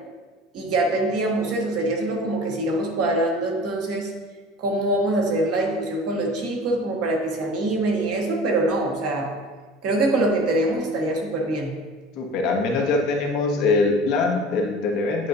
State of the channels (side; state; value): both; normal; correlation 0.41